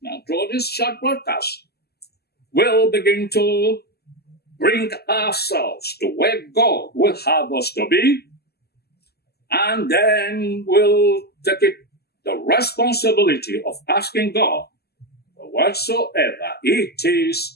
now through this short broadcast, we'll begin to bring ourselves to where God will have us to be, and then we'll take it the responsibility of asking God for whatsoever it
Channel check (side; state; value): right; late; 0.46 ms